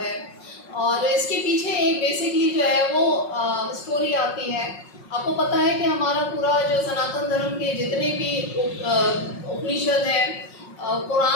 और इसके पीछे एक बेसिकली जो है वो स्टोरी आती है। आपको पता है कि हमारा पूरा जो सनातन धर्म के जितने भी उपनिषद हैं,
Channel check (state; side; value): late; right; 5.5 ms